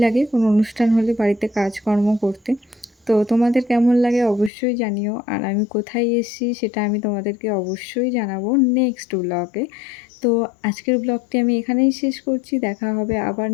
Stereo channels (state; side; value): drops out; right; at 4.5 s